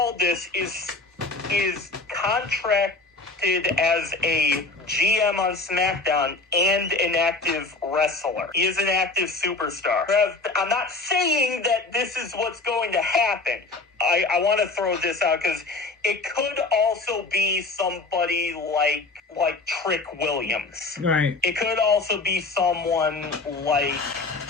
is contracted as a GM on SmackDown and an active wrestler. He is an active superstar. I'm not saying that this is what's going to happen. I want to throw this out because it could also be somebody like Trick Williams. Right. It could also be someone like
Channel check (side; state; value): right; quieter; 3.5 dB